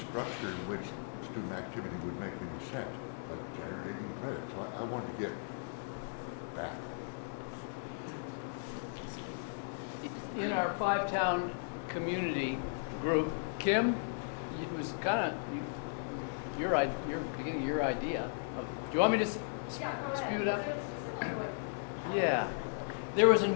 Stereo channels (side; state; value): right; silent; digital silence